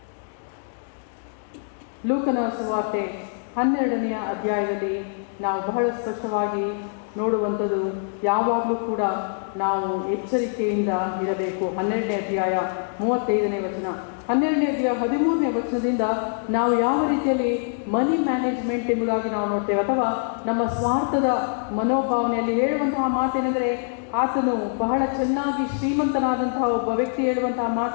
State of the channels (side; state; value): right; silent; digital silence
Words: 12ನೇ ಅಧ್ಯಾಯದಲ್ಲಿ ನಾವು ಬಹಳ ಸ್ಪಷ್ಟವಾಗಿ ನೋಡುವಂಥದ್ದು, ಯಾವಾಗಲೂ ಕೂಡ ನಾವು ಎಚ್ಚರಿಕೆಯಿಂದ ಇರಬೇಕು. 12ನೇ ಅಧ್ಯಾಯ 35ನೇ ವಚನ, 12ನೇ ಅಧ್ಯಾಯ 13ನೇ ವಚನದಿಂದ ನಾವು ಯಾವ ರೀತಿಯಲ್ಲಿ ಮನಿ ಮ್ಯಾನೇಜ್ಮೆಂಟ್ ಎಂಬುದಾಗಿ ನಾವು ನೋಡ್ತೇವೆ, ಅಥವಾ ನಮ್ಮ ಸ್ವಾರ್ಥದ ಮನೋಭಾವನೆಯಲ್ಲಿ ಹೇಳುವಂತಹ ಮಾತೇನೆಂದರೆ, ಆತನು ಬಹಳ ಚೆನ್ನಾಗಿ ಶ್ರೀಮಂತನಾದಂತಹ ಒಬ್ಬ ವ್ಯಕ್ತಿ ಹೇಳುವಂತಹ